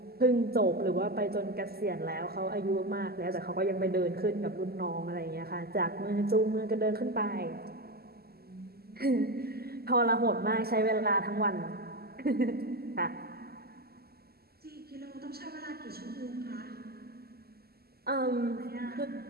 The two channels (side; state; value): left; late; 0.46 ms